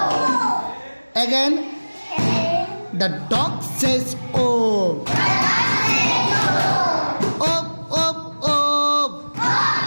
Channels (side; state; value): both; inverted; correlation -1.00